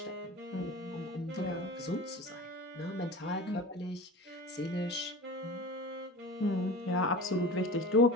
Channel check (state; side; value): normal; both; correlation 0.34